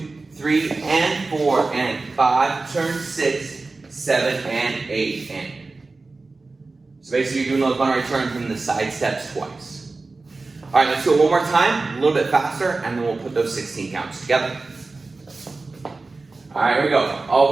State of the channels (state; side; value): quieter; left; 3.6 dB